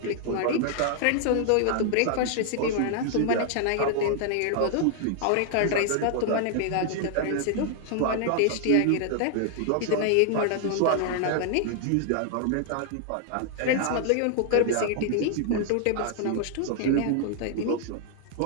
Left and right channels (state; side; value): different; both; correlation 0.00